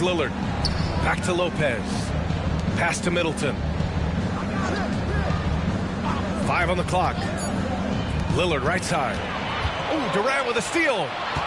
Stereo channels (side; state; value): both; identical; correlation 1.00